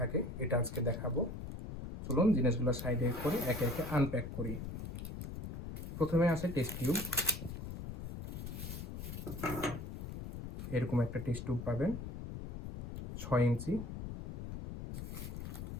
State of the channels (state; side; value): noise; left; rumble, 7 dB below the sound